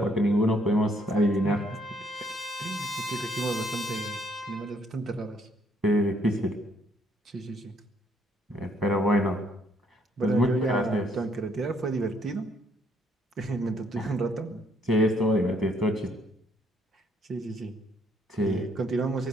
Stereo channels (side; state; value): both; normal; correlation 0.68